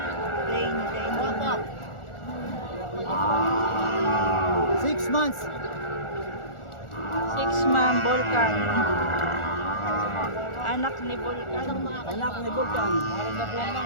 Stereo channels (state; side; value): late; right; 1.4 ms